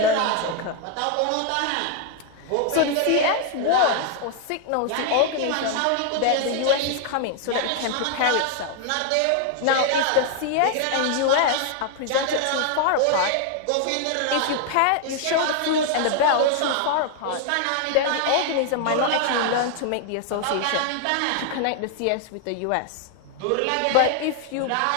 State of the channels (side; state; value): both; different; correlation 0.00